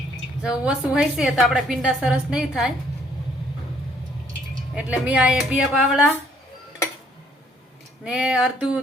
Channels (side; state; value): both; normal; correlation 0.64